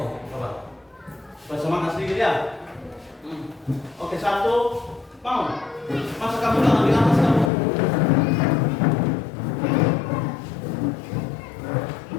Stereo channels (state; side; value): drops out; right; at 7.5 s